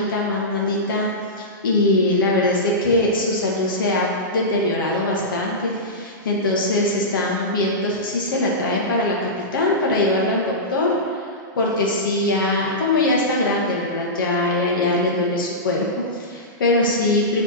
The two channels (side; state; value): both; normal; correlation -0.16